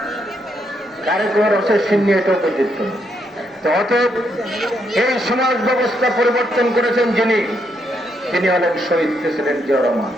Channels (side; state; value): both; normal; correlation 0.77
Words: কারে কয় রসের সিন্নি, এটাও পর্যন্ত। তো অতএব এই সমাজ ব্যবস্থা পরিবর্তন করেছেন যিনি হলেন শহীদ প্রেসিডেন্ট জিয়া রহমান।